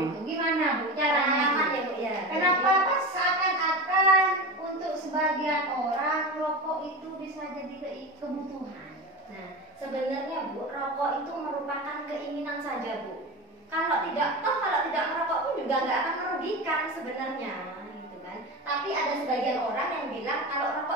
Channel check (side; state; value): both; normal; correlation 0.25